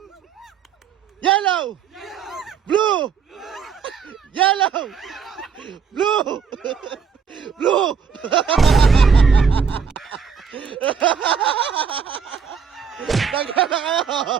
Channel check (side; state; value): left; quieter; 6.3 dB